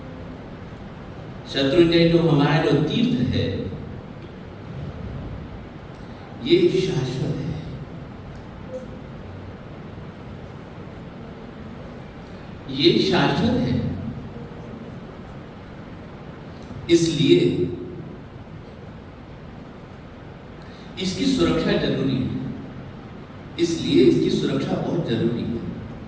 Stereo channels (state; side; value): identical; both; correlation 1.00